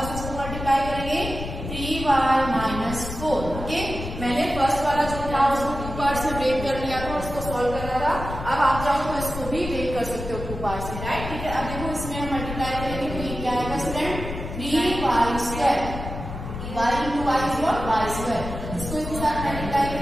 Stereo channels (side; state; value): left; noise; rumble, 8 dB below the sound